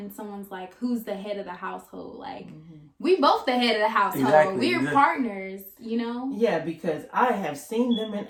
someone's like, who's the head of the household? Like, we both the head of the household. Exactly. We're partners, you know? Yeah, because I have seen them in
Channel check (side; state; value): both; identical; correlation 1.00